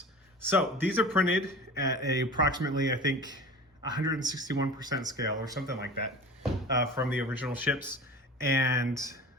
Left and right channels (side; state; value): both; normal; correlation 0.36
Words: So these are printed at approximately, I think, 161% scale or something like that from the original ships. And